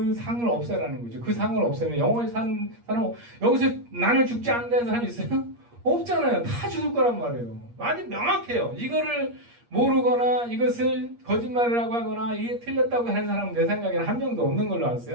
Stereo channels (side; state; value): left; late; 8.5 ms